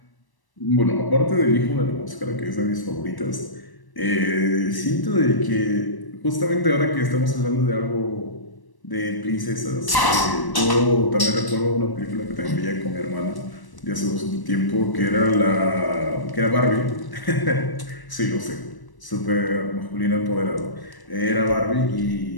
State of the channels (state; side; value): late; right; 1.1 ms